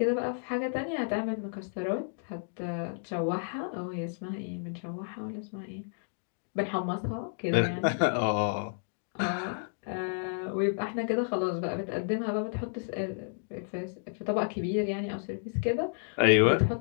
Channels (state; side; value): silent; right; digital silence